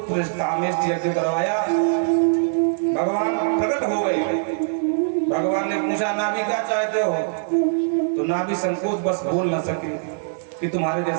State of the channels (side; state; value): left; silent; digital silence